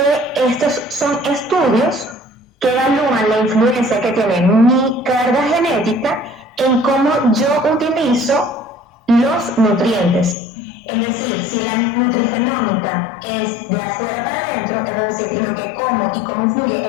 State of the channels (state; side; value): drops out; right; at 10.4 s